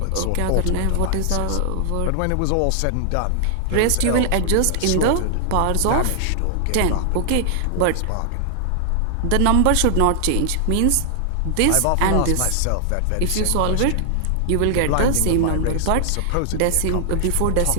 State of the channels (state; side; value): different; both; correlation 0.00